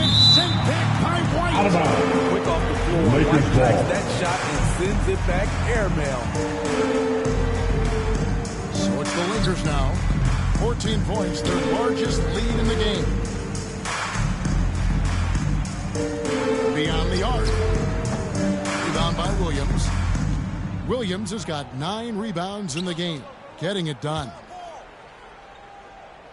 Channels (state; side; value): identical; both; correlation 1.00